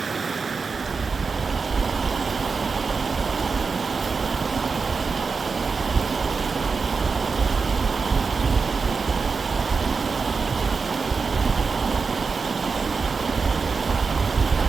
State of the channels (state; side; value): quieter; left; 4.8 dB